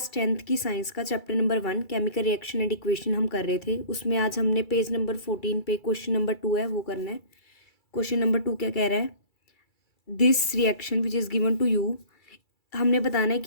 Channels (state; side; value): late; right; 2.3 ms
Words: 10th की science का chapter number 1 chemical reaction and equation हम कर रहे थे। उसमें आज हमने पेज नंबर 14 पे क्वेश्चन नंबर 2 है वो करना है। क्वेश्चन नंबर 2 क्या कह रहा है? This reaction which is given to you, हमने बताना है